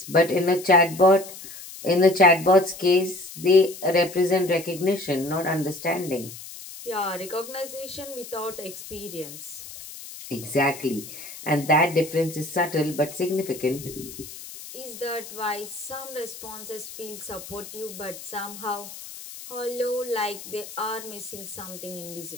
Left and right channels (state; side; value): noise; left; hiss, 14 dB below the sound